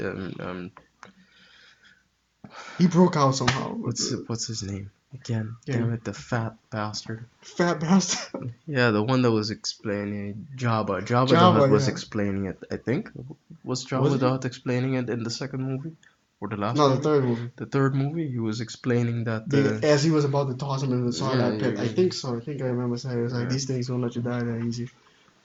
He broke out somehow. what's his name again? Yeah, Damn it, the fat bastard. fat bastard. Yeah, the one that was explaining Jabba. Jabba the Java, Hutt was yeah. explaining it. I think was Was Jabba he? the Hutt explaining it in the second movie or the last No, the movie? third movie. The third movie, he was explaining that. As he was about to toss him into the Yeah, Sarlacc pit. I think so. I think I remember saying it was like yeah, these things won't let you die that easy.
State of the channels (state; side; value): identical; both; correlation 1.00